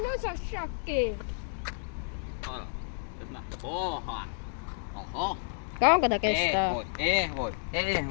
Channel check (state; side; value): silent; right; digital silence